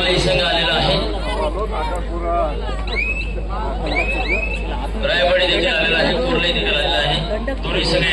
संघ आलेला आहे. रायवाडी देखील आलेला आहे. कोरली देखील आलेला आहे. दोन्ही संघ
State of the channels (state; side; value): identical; both; correlation 1.00